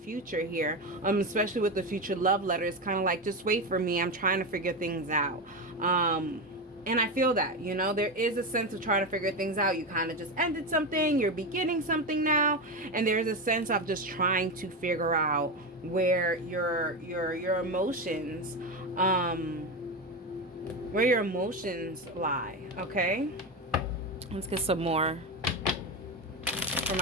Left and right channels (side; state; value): both; normal; correlation 0.16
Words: here. Especially with the future love letter, it's kind of like, just wait for me, I'm trying to figure things out. And I feel that, you know, there is a sense of trying to figure things out. You kind of just ended something, you're beginning something now, and there's a sense of just trying to figure out where your emotions lie. Okay, let's get some more for